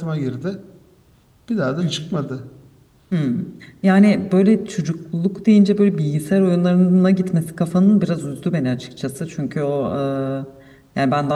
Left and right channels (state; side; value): identical; both; correlation 1.00